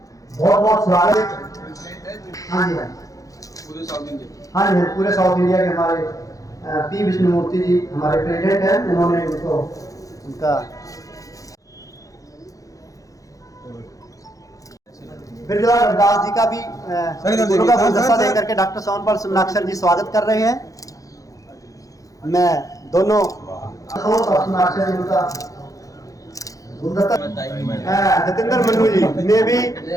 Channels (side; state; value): right; late; 0.17 ms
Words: बहुत बहुत स्वागत। हाँ जी हाँ जी पूरे साउथ इंडिया के हमारे पी विष्णुमूर्ति जी हमारे प्रेसिडेंट हैं, उन्होंने उनको उनका बिरजू रविदास जी का भी गुरु का गुलदस्ता दे करके डॉक्टर सोनपाल सुमनाक्षर जी स्वागत कर रहे हैं। मैं दोनों सुमनाक्षर जी का जतिंदर मन्नू जी ने भी